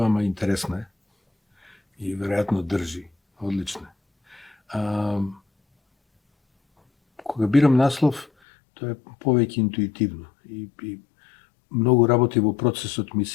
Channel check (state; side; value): drops out; right; at 8.2 s